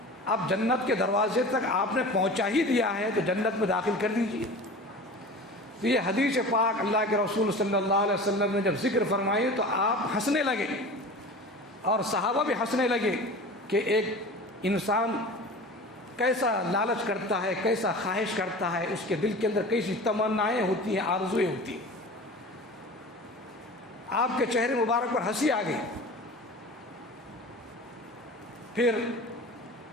اب جنت کے دروازے تک آپ نے پہنچا ہی دیا ہے تو جنت میں داخل کر دیجیے۔ تو یہ حدیث پاک اللہ کے رسول صلی اللہ علیہ وسلم نے جب ذکر فرمائی تو آپ ہنسنے لگے اور صحابہ بھی ہنسنے لگے کہ ایک انسان کیسا لالچ کرتا ہے، کیسا خواہش کرتا ہے، اس کے دل کے اندر کیسی تمنائیں ہوتی ہیں، آرزویں ہوتی ہیں۔ آپ کے چہرے مبارک پر ہنسی آ گئی۔ پھر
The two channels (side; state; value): both; normal; correlation 0.36